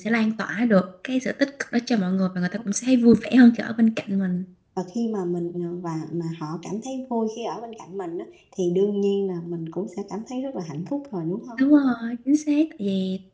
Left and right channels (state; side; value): identical; both; correlation 1.00